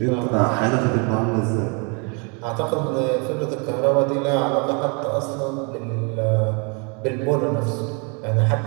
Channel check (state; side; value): quieter; left; 34.4 dB